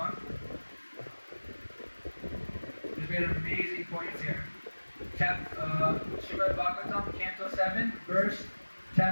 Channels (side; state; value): both; inverted; correlation -1.00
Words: There's made amazing points here. Srimad Bhagavatam, Canto 7,